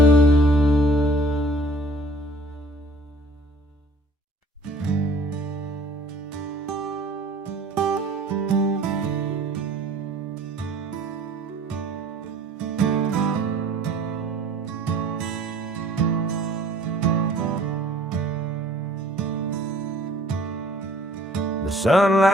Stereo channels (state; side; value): normal; both; correlation 0.52